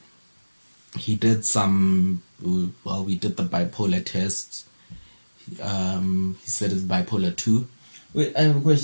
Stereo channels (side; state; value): both; inverted; correlation -1.00